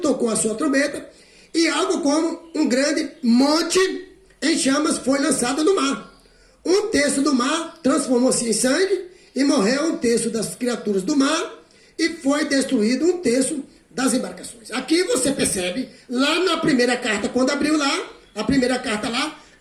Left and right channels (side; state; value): both; identical; correlation 1.00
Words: a sua trombeta, e algo como um grande monte em chamas foi lançado no mar. 1/3 do mar transformou-se em sangue, e morreu 1/3 das criaturas do mar, e foi destruído 1/3 das embarcações. Aqui você percebe, lá na primeira carta, quando abriu lá, a primeira carta lá,